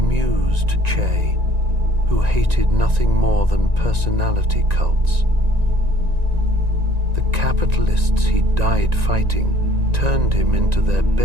Che, who hated nothing more than personality cults. The capitalists he died fighting turned him into their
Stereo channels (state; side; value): late; left; 1.9 ms